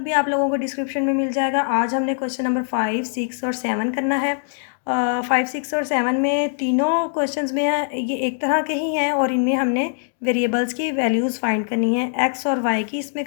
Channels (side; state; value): right; silent; digital silence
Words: भी आप लोगों को डिस्क्रिप्शन में मिल जाएगा। आज हमने क्वेश्चन नंबर 5, 6 और 7 करना है। 5, 6 और 7 में तीनों क्वेश्चंस में ये एक तरह के ही हैं और इनमें हमने वेरिएबल्स की वैल्यूज़ फाइंड करनी है। एक्स और वाई की इसमें